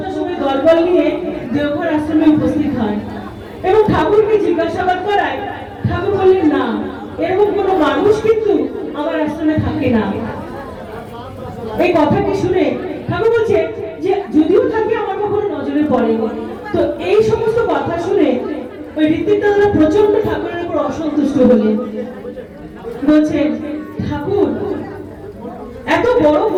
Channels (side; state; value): both; identical; correlation 1.00